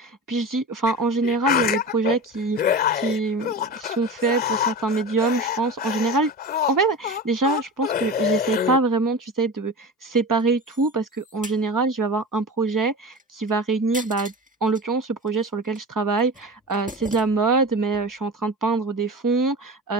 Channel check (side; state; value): both; normal; correlation 0.30